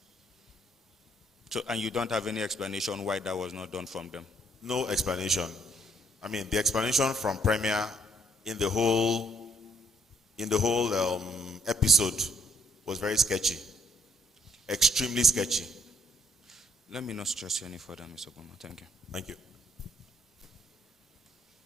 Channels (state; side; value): normal; both; correlation 0.69